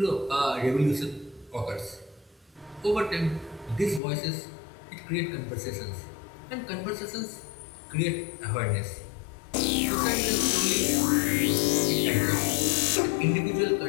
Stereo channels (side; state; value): right; drops out; at 4.0 s